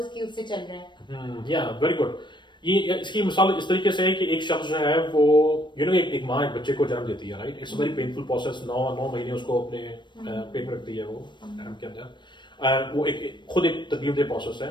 उससे चल रहे हैं। या वेरी गुड। ये इसकी मिसाल इस तरीके से है कि एक शख्स जो है वो एक माँ एक बच्चे को जन्म देती है, right? It's a very painful process, 9 महीने उसको अपने पेट में रखती है वो के अंदर, वो खुद एक तकलीफदेह प्रोसेस है।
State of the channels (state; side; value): late; right; 0.22 ms